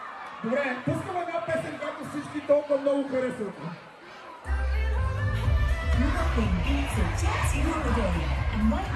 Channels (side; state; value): both; identical; correlation 1.00